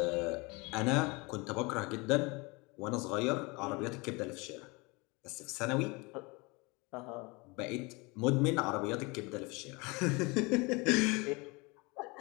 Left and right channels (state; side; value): quieter; right; 26.8 dB